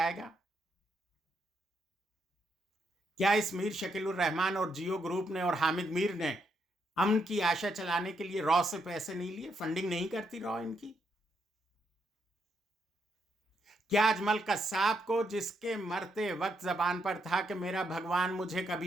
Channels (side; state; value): both; normal; correlation 0.79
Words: گا؟ کیا اس میر شکیل الرحمان اور جیو گروپ نے اور حامد میر نے امن کی آشا چلانے کے لیے رو سے پیسے نہیں لیے؟ فنڈنگ نہیں کرتی رو ان کی؟ کیا اجمل قصاب کو، جس کے مرتے وقت زبان پر تھا کہ میرا بھگوان مجھے